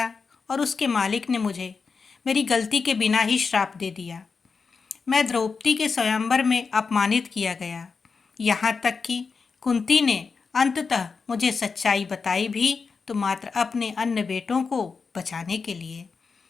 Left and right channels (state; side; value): quieter; right; 5.0 dB